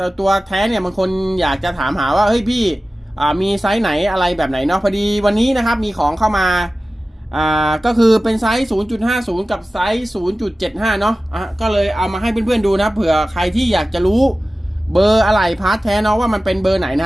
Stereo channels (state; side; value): normal; both; correlation 0.96